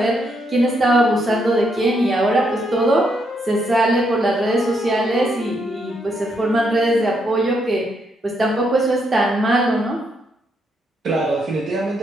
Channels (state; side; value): normal; both; correlation 0.77